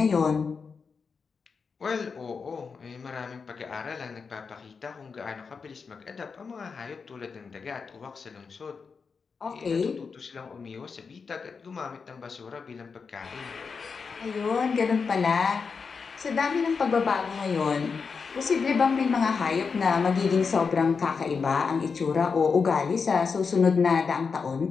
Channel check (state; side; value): quieter; right; 5.3 dB